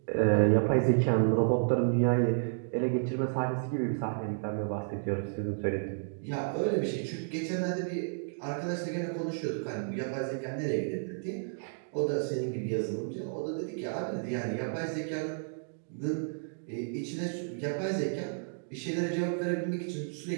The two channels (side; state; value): left; silent; digital silence